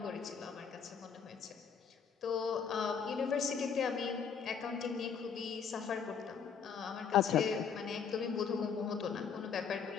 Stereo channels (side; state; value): right; quieter; 6.6 dB